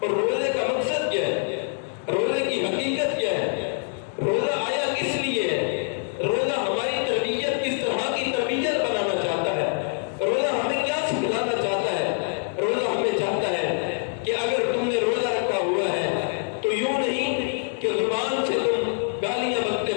اور روزے کا مقصد کیا ہے؟ روزے کی حقیقت کیا ہے؟ روزہ آیا کس لیے ہے؟ روزہ ہماری تربیت کس طرح کی تربیت بنانا چاہتا ہے؟ روزہ ہمیں کیا سکھلانا چاہتا ہے؟ روزہ ہمیں چاہتا ہے کہ اگر تم نے روزہ رکھا ہوا ہے تو یوں نہیں کہ زبان سے تم گالیاں بکتے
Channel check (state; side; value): silent; right; 56 dB below the other